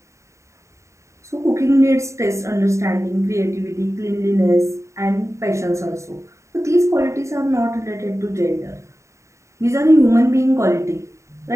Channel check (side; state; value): left; late; 0.14 ms